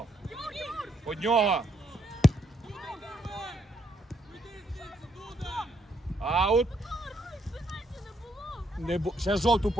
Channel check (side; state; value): both; normal; correlation 0.74